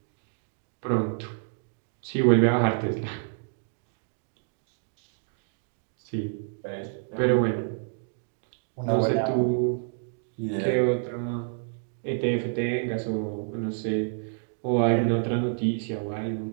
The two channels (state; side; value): silent; left; digital silence